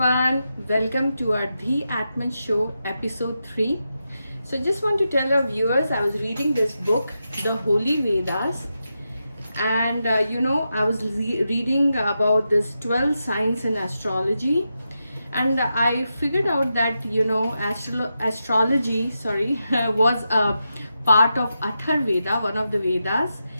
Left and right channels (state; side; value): inverted; both; correlation -0.88